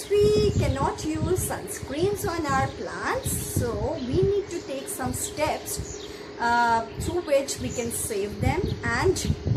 we cannot use sunscreens on our plants, so we need to take some steps through which we can save them, and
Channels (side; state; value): both; identical; correlation 1.00